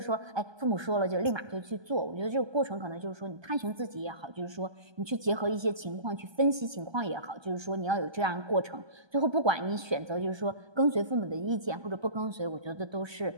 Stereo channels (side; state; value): left; late; 1.3 ms